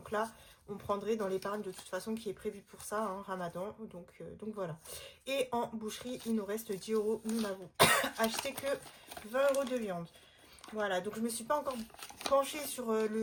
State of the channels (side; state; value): both; identical; correlation 1.00